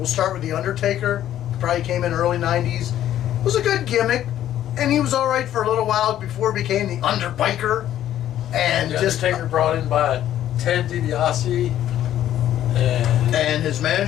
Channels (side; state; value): right; quieter; 11.8 dB